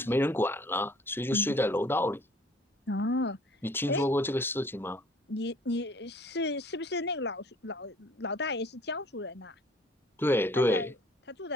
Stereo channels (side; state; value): both; normal; correlation 0.54